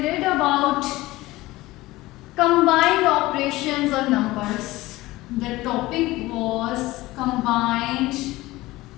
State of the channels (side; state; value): right; quieter; 18.8 dB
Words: read about combined operations on numbers. The topic was combined